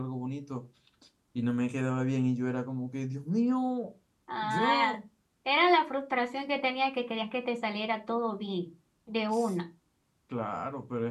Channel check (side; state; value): both; identical; correlation 1.00